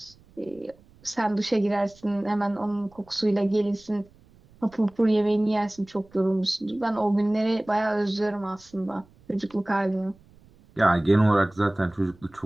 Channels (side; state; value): right; noise; rumble, 28 dB below the sound